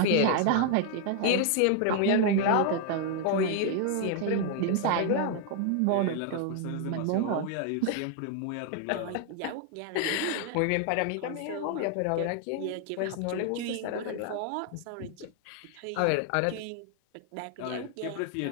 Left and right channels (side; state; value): both; different; correlation 0.00